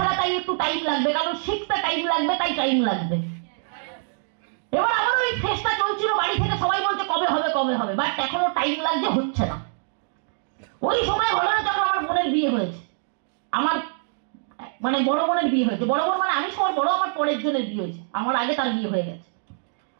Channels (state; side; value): silent; left; 62 dB below the other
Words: তাই একটু টাইম লাগবে, কারণ শিখতে টাইম লাগবে, তাই টাইম লাগবে। এবার আমার ওই ফেসটা চলছিল, বাড়ি থেকে সবাই বলছে কবে হবে কবে হবে, বাট এখনো টাইম লাগছে, হচ্ছে না। ওই সময় ঘটনা যখন আমার বোনের বিয়ে হয়েছে, আমার মানে বড় বোনের বিয়ে হয়েছে, বড় বোন মানে আমি সবার বড়, আমার পরের জনের বিয়ে হয়েছে, আমার আগে তার বিয়ে হয়ে গেছে।